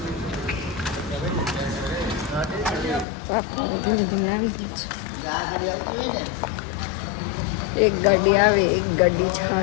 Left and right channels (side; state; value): right; drops out; at 3.1 s